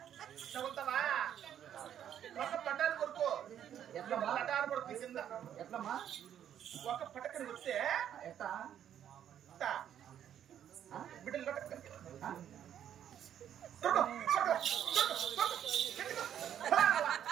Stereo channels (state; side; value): quieter; left; 9.9 dB